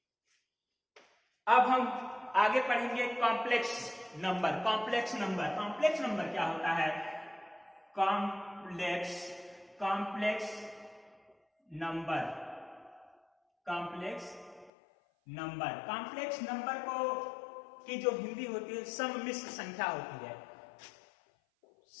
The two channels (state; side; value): drops out; right; at 14.7 s